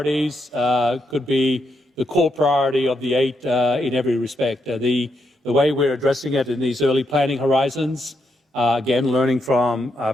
could be core priority of the 8 in every respect. The way we're addressing it in these early planning horizons, again, learning from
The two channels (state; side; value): normal; both; correlation 0.80